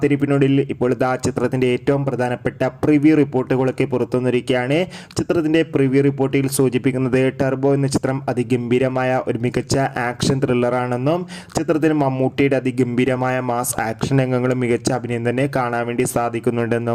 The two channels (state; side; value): identical; both; correlation 1.00